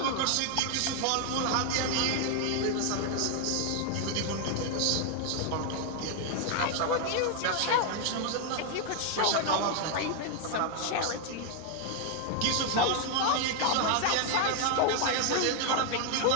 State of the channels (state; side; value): different; both; correlation 0.01